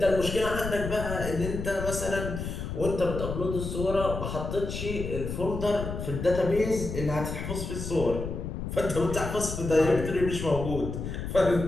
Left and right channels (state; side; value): noise; left; rumble, 5 dB below the sound